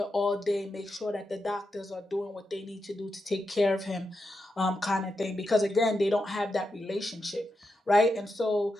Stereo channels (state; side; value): normal; both; correlation 0.87